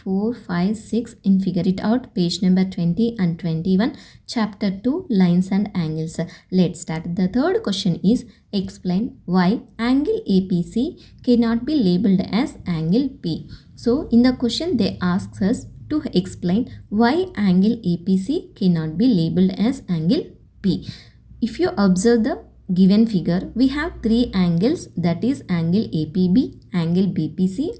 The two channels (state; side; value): identical; both; correlation 1.00